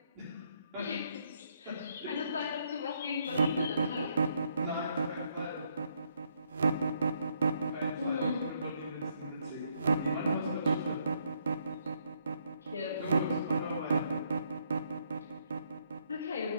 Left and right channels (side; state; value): both; inverted; correlation -0.72